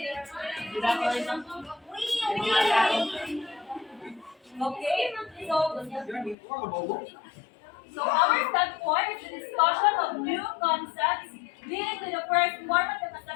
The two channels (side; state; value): right; drops out; at 6.4 s